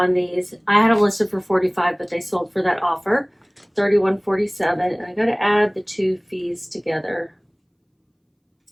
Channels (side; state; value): both; identical; correlation 1.00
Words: these. I had them listed for $45, but they sold for that offer, $31.47. And I got to add the 2 fees together.